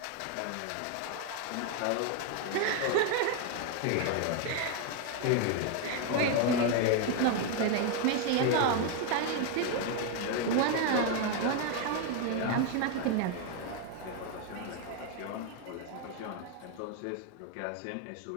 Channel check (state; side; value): different; both; correlation 0.01